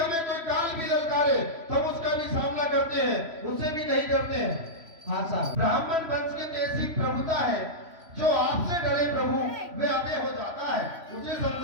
कोई काल भी ललकारे तो हम उसका भी सामना करते हैं, उससे भी नहीं डरते हैं। हाँ साहब ब्राह्मण वंश की तो ऐसी प्रभुता है, जो आपसे डरे प्रभु वे अभय हो जाता है, उसे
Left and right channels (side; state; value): left; late; 3.0 ms